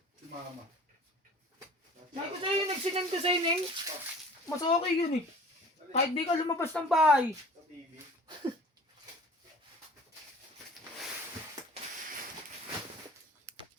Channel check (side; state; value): both; normal; correlation 0.44